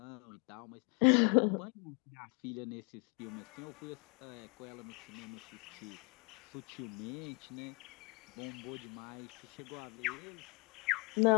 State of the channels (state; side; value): quieter; right; 32.2 dB